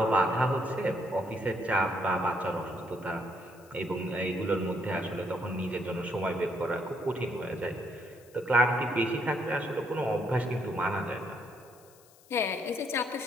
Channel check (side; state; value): left; noise; hiss, 26 dB below the sound